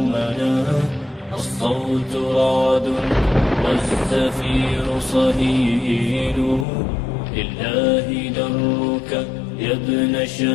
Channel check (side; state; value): right; drops out; at 6.7 s